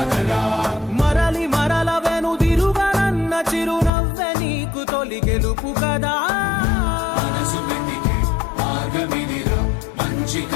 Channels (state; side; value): drops out; right; at 3.9 s